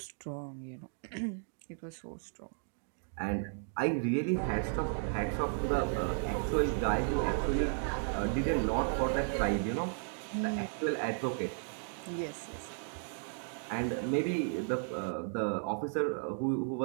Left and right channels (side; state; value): left; silent; 55 dB below the other